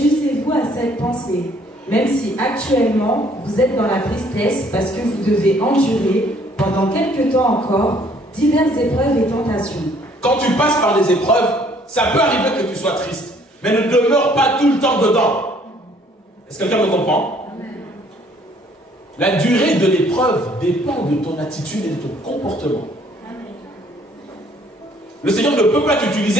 à cette pensée, même si actuellement vous êtes dans la tristesse parce que vous devez endurer pendant quelque temps encore diverses épreuves et tentations. Quand tu passes par des épreuves, ça peut arriver que tu sois triste, mais ne demeure pas tout le temps dedans. Est-ce que quelqu'un me comprend? La durée de l'épreuve dépend de ton attitude et de ton comportement. Le Seigneur ne peut pas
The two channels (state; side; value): normal; both; correlation 0.61